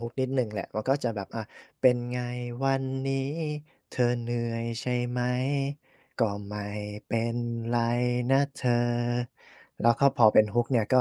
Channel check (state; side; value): identical; both; correlation 1.00